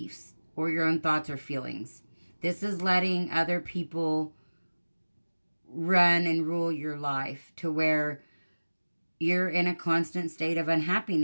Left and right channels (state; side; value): inverted; both; correlation -1.00